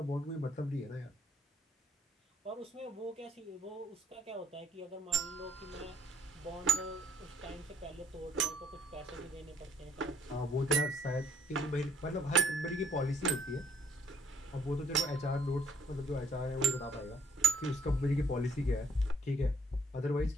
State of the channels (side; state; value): both; normal; correlation 0.63